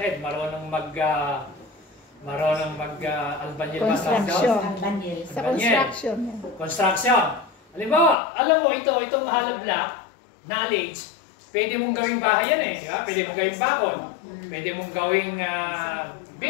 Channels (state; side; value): drops out; right; at 8.2 s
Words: marunong mag-albanil ba? Construction. Sa construction. Construction. Halimbawa, alam mo, itong hollow block, knowledge, pwede mong gawing bahay yan eh. Diba? Pwede mong gawing bakod. Pwede mong gawing